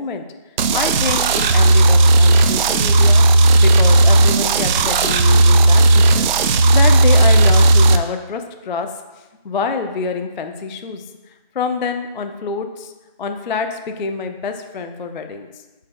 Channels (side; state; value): both; inverted; correlation -0.78